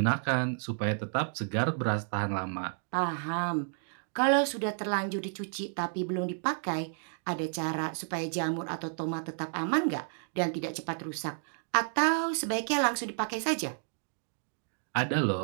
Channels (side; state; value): left; silent; 57 dB below the other